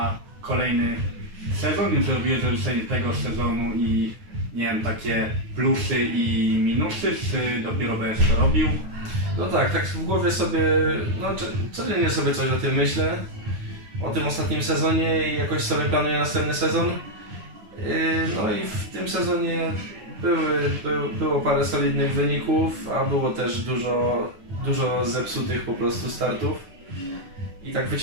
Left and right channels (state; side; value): late; left; 9.4 ms